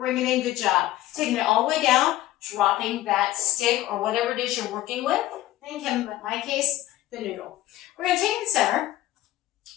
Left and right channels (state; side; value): quieter; right; 15.0 dB